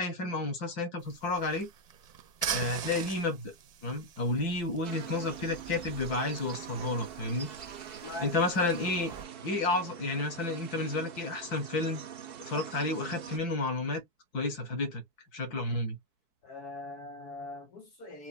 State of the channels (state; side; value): late; right; 4.6 ms